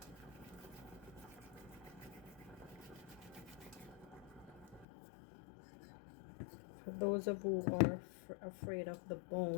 those of you who are afraid of the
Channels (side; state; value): right; drops out; at 4.9 s